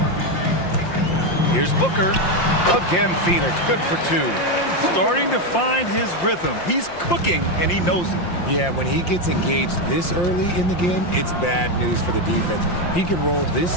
Here's Booker. Again, Phoenix. Good for 2. Starting to find his rhythm. He's cooking, and he knows it. Yeah, when he gets engaged this early in the game, it's bad news for the defense. He can roll this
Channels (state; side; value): late; right; 5.7 ms